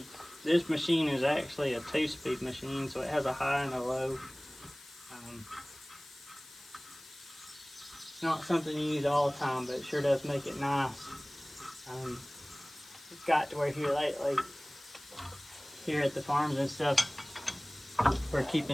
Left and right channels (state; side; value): noise; left; hiss, 20 dB below the sound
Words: This machine is actually a 2-speed machine, so it has a high and a low. It's not something you use all the time, but it sure does make it nice. It's got to where here lately, here at the farms and stuff, we're